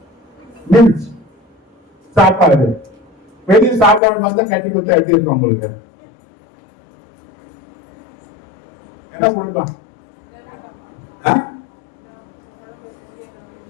மீல்ஸ் சாப்பாடு. வெளியே சாப்பாடு பார்த்தா கட்டி கொடுத்தா எப்படி இருக்கும் உங்களுக்கு? என்ன கொடுப்பான்?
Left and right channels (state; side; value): drops out; right; at 4.0 s